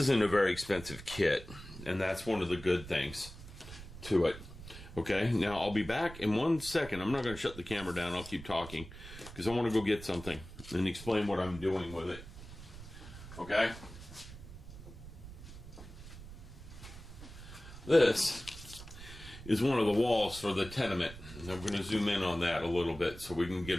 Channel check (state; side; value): noise; right; rumble, 14 dB below the sound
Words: a very expensive kit, and that's one of the good things to it. Okay, now I'll be back in 1 second. I'm not going to shut the camera down. I'll keep talking because I want to go get something and explain what I'm doing with it. Okay? This is one of the walls for the tenement. And I'm going to zoom in on that a little bit so we can get